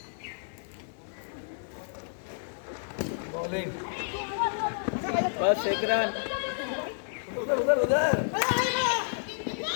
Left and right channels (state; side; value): silent; right; 58 dB below the other